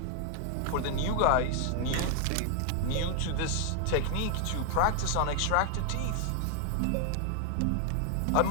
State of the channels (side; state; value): both; different; correlation 0.00